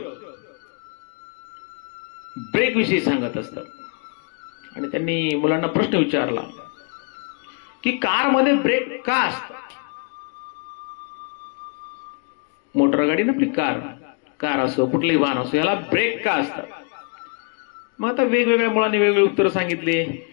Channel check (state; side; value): quieter; right; 35.5 dB